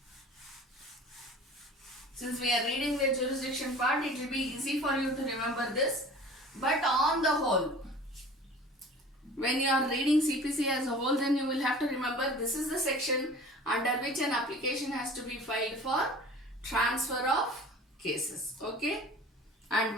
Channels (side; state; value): both; normal; correlation 0.43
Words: Since we are reading the jurisdiction part, it will be easy for you to remember this. But on the whole, when you are reading CPC as a whole, then you will have to remember this is the section under which an application has to be filed for transfer of cases, okay, and